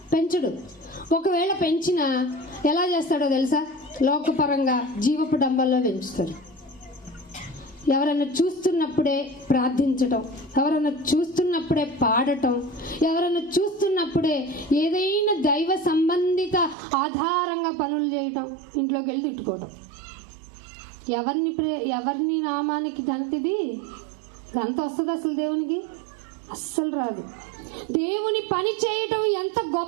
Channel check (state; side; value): drops out; left; at 16.8 s